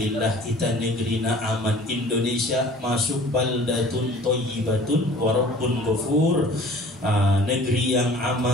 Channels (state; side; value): normal; both; correlation 0.48